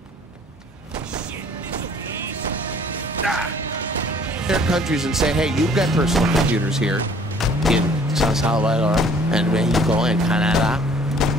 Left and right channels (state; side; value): normal; both; correlation 0.55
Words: Their countries and say, hey, you've got personal computers here in San Salvador and Mexico and Canada